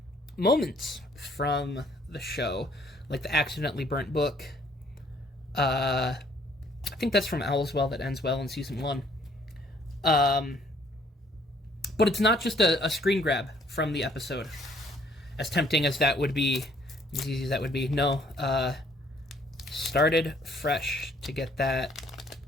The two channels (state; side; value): normal; both; correlation 0.62